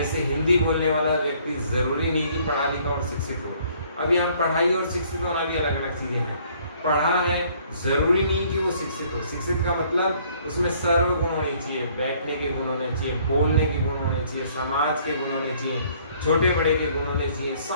हिंदी बोलने वाला व्यक्ति जरूरी नहीं कि पढ़ा लिखा और शिक्षित हो। अभी हम पढ़ाई और शिक्षित होना भी अलग अलग चीजें हैं। पढ़ा है जरूरी नहीं कि वो शिक्षित हो। शिक्षित का मतलब उसमें सर्व गुण होने चाहिए, बैठने के गुण होने चाहिए, बोलने के गुण होने चाहिए, समाज के गुण होने चाहिए, छोटे बड़े के गुण होने चाहिए,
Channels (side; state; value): both; inverted; correlation -0.61